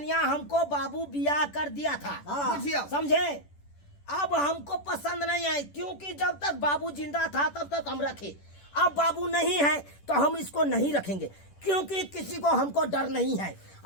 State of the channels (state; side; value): late; right; 10 ms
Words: हमको बाबू बियाह कर दिया था, बुझियो। समझे? अब हमको पसंद नहीं आई, क्योंकि जब तक बाबू जिंदा था तब तक हम रखे। अब बाबू नहीं है तो हम इसको नहीं रखेंगे, क्योंकि किसी को हमको डर नहीं है।